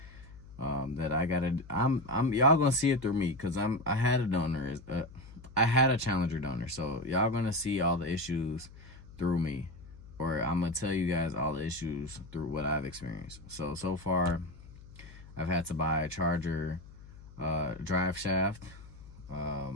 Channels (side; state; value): left; noise; hum, 18 dB below the sound